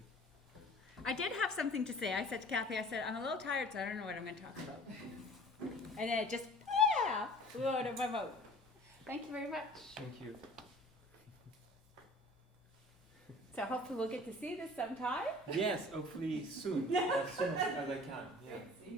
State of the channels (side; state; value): both; normal; correlation 0.47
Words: I did have something to say. I said to Kathy, I said, I'm a little tired, so I don't know what I'm going to talk about. And then it just, flew out of my mouth. Thank you very much. Thank you. So hopefully we'll get to see this sometime. Yes, hopefully soon, as soon as I can. Yeah. Great